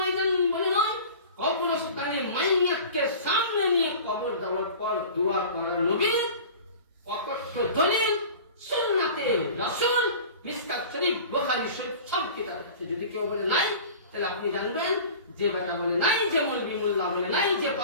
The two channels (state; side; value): inverted; both; correlation -0.39